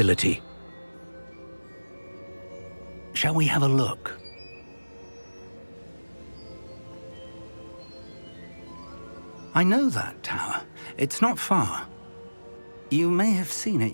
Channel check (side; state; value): both; inverted; correlation -1.00